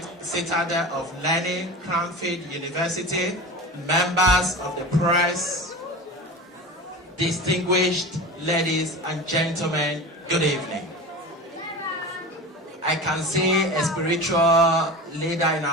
citadel of learning, Cranfield University, members of the press, distinguished ladies and gentlemen, good evening. I can see a spiritual leader in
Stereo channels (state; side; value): normal; both; correlation 0.30